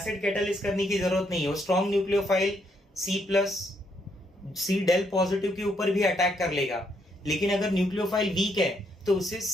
कैटालिस करने की जरूरत नहीं है। वो strong nucleophile C del positive के ऊपर भी अटैक कर लेगा, लेकिन अगर न्यूक्लियोफाइल वीक है तो उसे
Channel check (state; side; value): normal; both; correlation 0.74